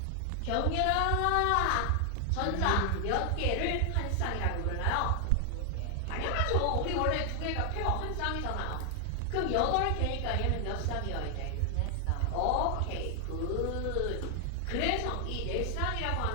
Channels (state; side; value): different; both; correlation 0.00